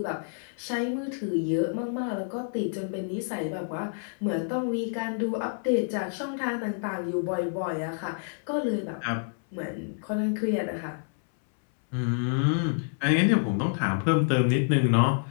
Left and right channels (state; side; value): silent; right; 59 dB below the other